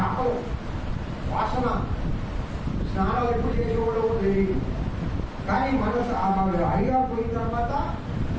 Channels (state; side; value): identical; both; correlation 1.00